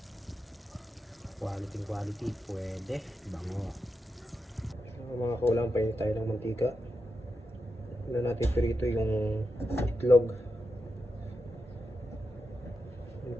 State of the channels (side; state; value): both; normal; correlation 0.87